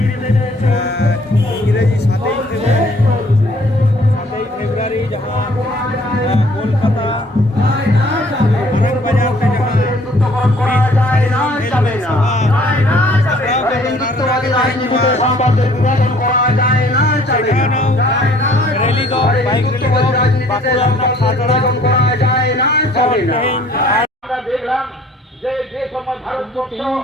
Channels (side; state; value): both; normal; correlation 0.57